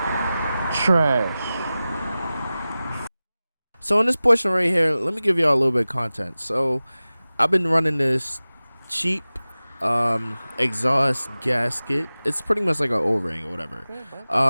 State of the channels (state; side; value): inverted; both; correlation -0.97